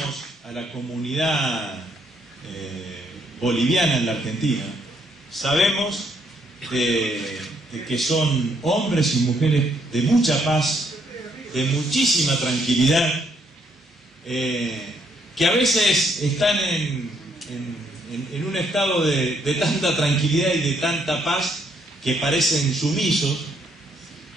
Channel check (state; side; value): normal; both; correlation 0.72